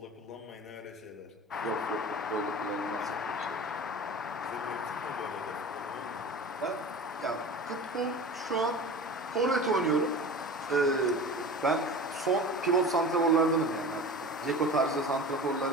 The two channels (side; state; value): both; normal; correlation 0.35